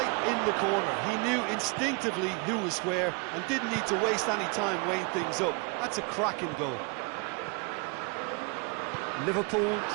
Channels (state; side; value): quieter; left; 31.7 dB